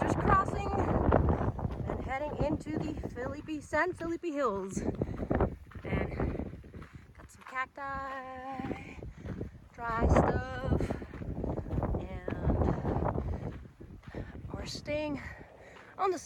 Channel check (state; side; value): identical; both; correlation 1.00